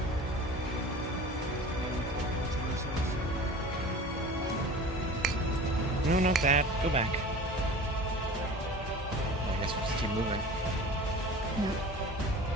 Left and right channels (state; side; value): normal; both; correlation 0.39